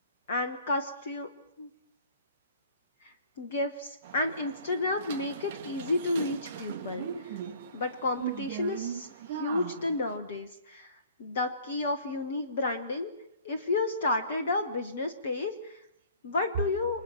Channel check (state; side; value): inverted; both; correlation -0.50